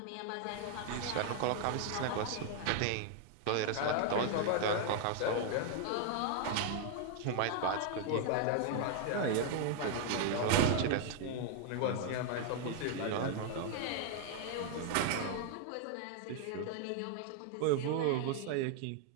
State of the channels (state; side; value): different; both; correlation 0.00